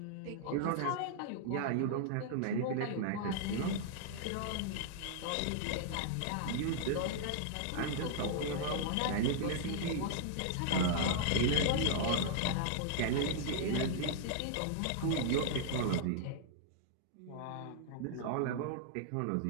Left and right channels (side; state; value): both; different; correlation -0.01